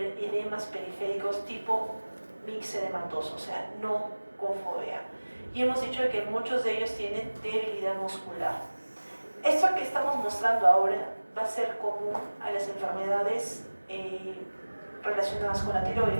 edemas periféricos tipo mixedematoso, o sea, no con fovea. Y hemos dicho que muchos de ellos tienen debilidad muscular. Esto que estamos mostrando ahora va a ser común a las enfermedades relacionadas con la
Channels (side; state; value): both; inverted; correlation -1.00